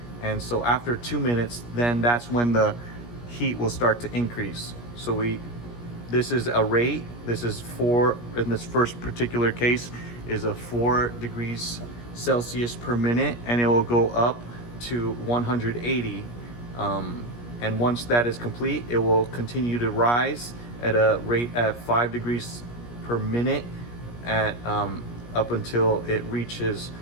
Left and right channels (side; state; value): right; late; 17 ms